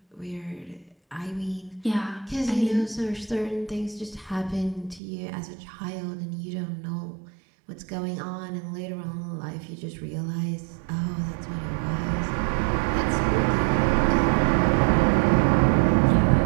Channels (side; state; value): left; drops out; at 5.0 s